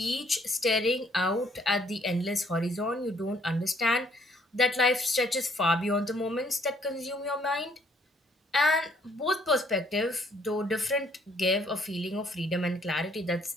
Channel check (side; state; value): both; normal; correlation 0.65